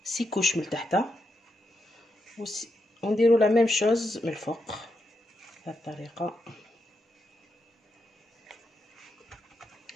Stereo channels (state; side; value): normal; both; correlation 0.84